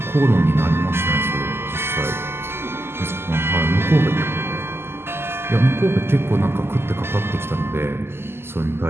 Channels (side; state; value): left; late; 0.12 ms